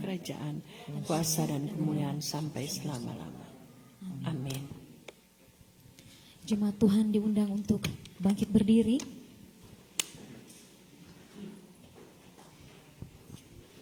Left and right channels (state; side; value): identical; both; correlation 1.00